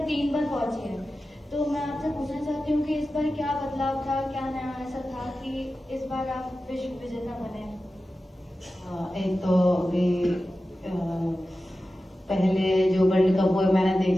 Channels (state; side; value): normal; both; correlation 0.94